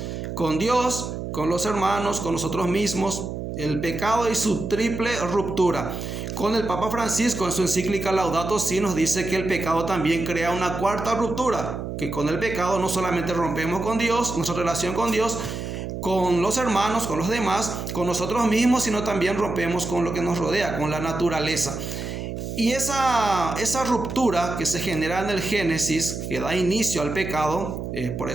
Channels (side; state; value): right; noise; hum, 6 dB below the sound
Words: con Dios, con los hermanos, con nosotros mismos. El pecado y su triple ruptura. Con el Papa Francisco en su encíclica Laudato Si nos dice que el pecado también crea una cuarta ruptura, que con el pecado no solamente rompemos con Dios, nuestra relación con Dios, con los hermanos, con los demás, con nosotros mismos, sino también rompemos con lo que nos rodea, con la naturaleza. Y esa ruptura que se genera en el Génesis, que da inicio al pecado, por